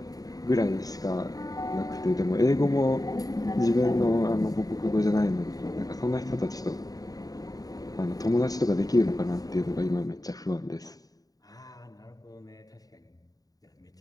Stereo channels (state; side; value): late; right; 0.18 ms